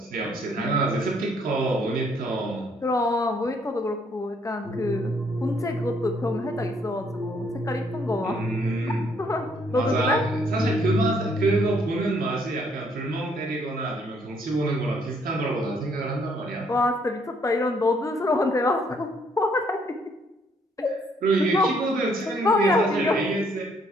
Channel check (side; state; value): both; normal; correlation 0.67